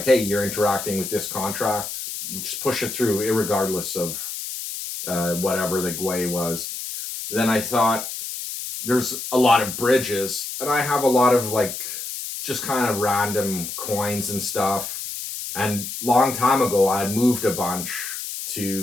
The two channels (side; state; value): left; noise; hiss, 7 dB below the sound